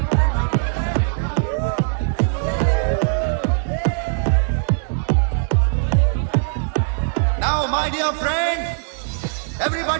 Now, my dear friend,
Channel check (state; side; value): silent; left; digital silence